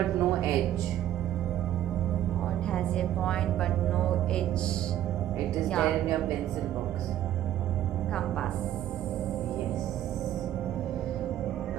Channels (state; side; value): quieter; left; 12.1 dB